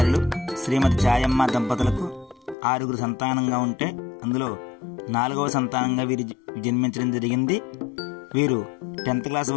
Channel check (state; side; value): drops out; right; at 2.6 s